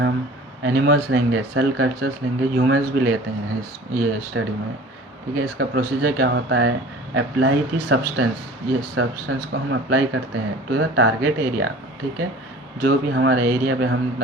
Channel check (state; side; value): normal; both; correlation 0.44